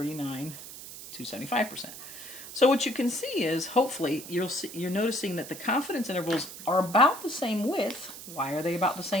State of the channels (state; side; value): noise; right; hiss, 13 dB below the sound